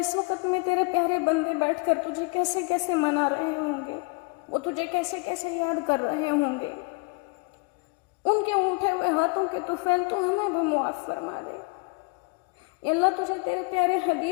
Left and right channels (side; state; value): right; quieter; 30.0 dB